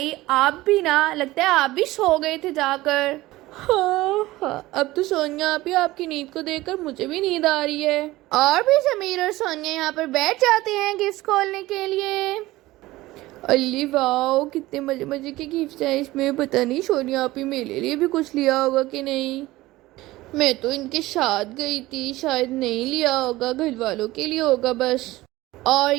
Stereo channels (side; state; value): left; quieter; 18.2 dB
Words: आप भी ना, लगता है आप भी सो गए थे जाकर। हाँ हाँ, अब तो सोनिया आप ही, आपकी नींद को देखकर मुझे भी नींद आ रही है। और भी समीर और सोनिया यहाँ पर बैठ जाते हैं गिफ्ट खोलने के लिए। अल्ली वाह, कितने मजे मजे के गिफ्ट हैं इसमें। पता नहीं सोनिया आप ही मेरे लिए भी कुछ लिया होगा कि नहीं। मैं तो इनके साथ गई थी, शायद नहीं लिया होगा, घर वालों के लिए होगा बस। और